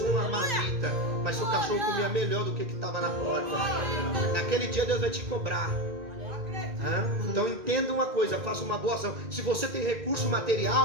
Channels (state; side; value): late; left; 1.9 ms